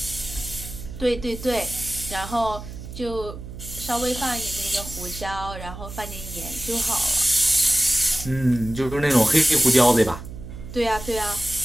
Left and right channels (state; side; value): noise; right; hum, 11 dB below the sound